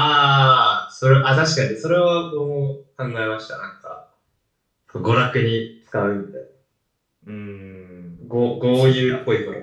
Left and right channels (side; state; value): both; identical; correlation 1.00